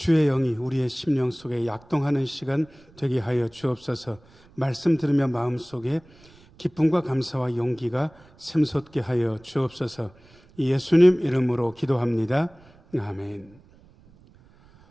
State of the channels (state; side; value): noise; right; rumble, 27 dB below the sound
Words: 영이 우리의 심령 속에 약동하는 시간 되게 하여 주옵소서. 말씀 들으며 마음속에 기쁨과 감사와 용기가 샘솟게 하여 주옵소서. 예수님 이름으로 기도합니다. 아멘.